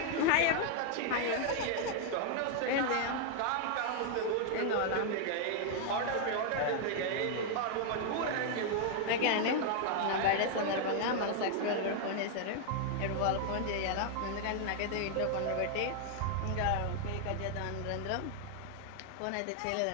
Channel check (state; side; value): different; both; correlation 0.00